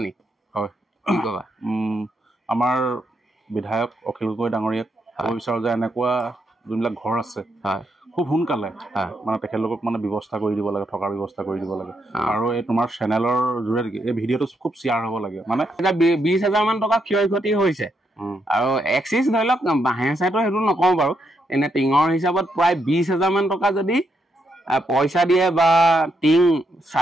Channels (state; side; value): normal; both; correlation 0.79